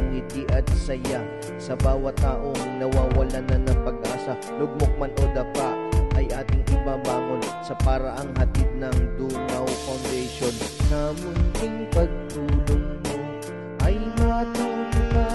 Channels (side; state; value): both; identical; correlation 1.00